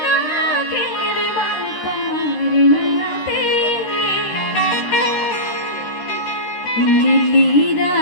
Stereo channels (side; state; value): right; late; 13 ms